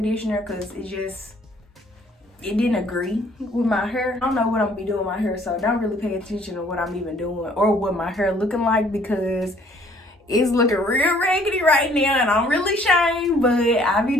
because it didn't agree with my hair. I don't know what I'm gonna be doing with my hair, so don't really pay attention to what I'm even doing or what my hair looking like because it's looking real raggedy right now and I'm really ashamed, but I be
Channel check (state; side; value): normal; both; correlation 0.60